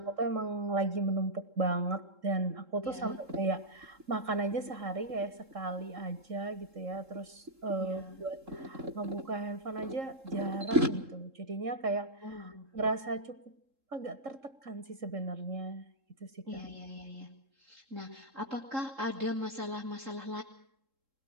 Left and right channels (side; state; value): left; late; 3.7 ms